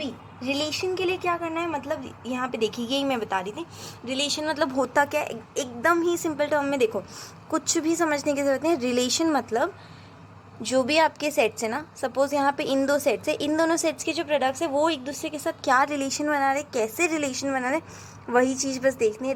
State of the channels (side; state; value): both; identical; correlation 1.00